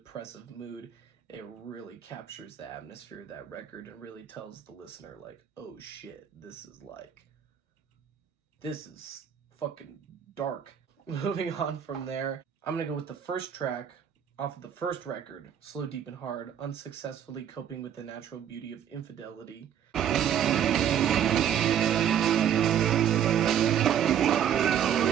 mood. It really captures the atmosphere of that record and really tells the listener, like, oh shit, this is fucking dark. Moving on from there, I'm gonna go with the first track off of the first record, Slow, Deep, and Hard, Unsuccessfully Coping with the Natural Beauty of Infidelity.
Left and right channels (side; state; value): left; quieter; 9.3 dB